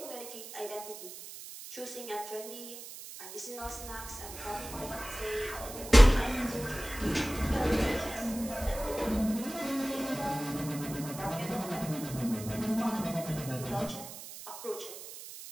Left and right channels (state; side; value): noise; right; hiss, 12 dB below the sound